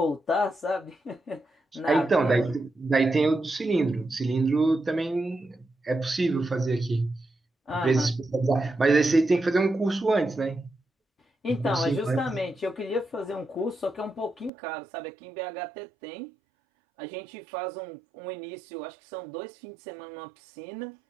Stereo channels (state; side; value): drops out; left; at 14.5 s